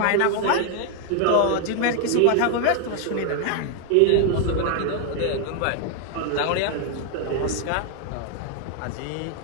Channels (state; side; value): different; both; correlation 0.00